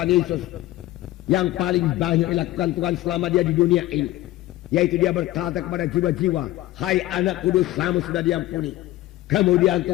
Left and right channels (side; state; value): right; quieter; 16.3 dB